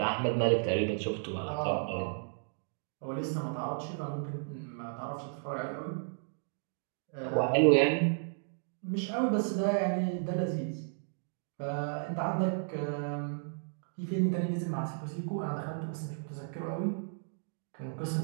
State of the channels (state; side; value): silent; left; digital silence